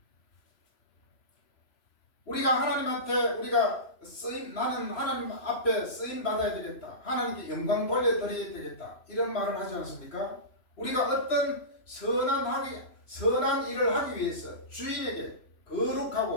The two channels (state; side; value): late; right; 3.0 ms